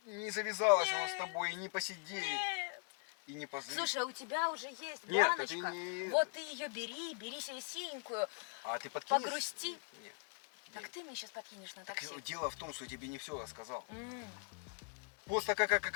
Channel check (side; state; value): right; quieter; 35.2 dB